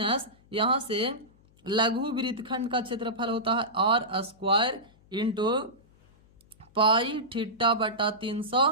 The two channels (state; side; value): noise; left; hum, 30 dB below the sound